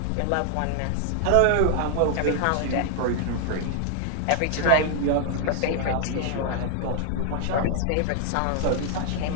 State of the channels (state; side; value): different; both; correlation 0.00